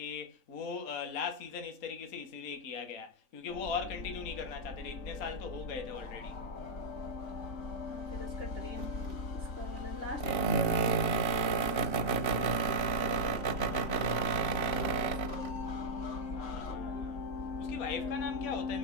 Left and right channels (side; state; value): right; late; 3.5 ms